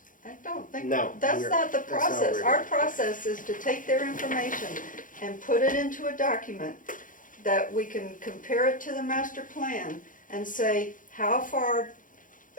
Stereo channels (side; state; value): right; late; 0.39 ms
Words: I don't think, No, that's we're- not the that's not what process. we're Our doing. process is to take their information and put it into a document that we can compare it to the master plan and say, how far,